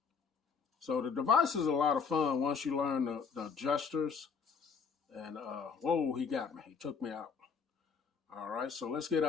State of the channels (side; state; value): right; quieter; 5.8 dB